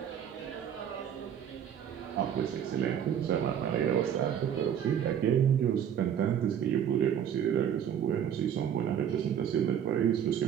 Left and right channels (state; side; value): quieter; left; 9.0 dB